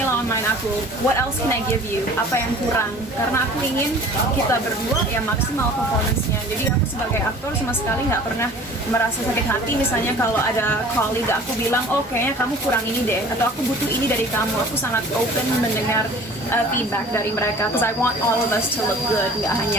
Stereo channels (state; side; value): normal; both; correlation 0.46